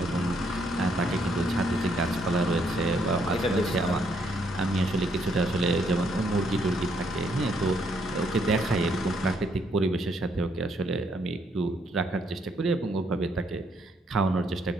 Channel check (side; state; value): both; normal; correlation 0.72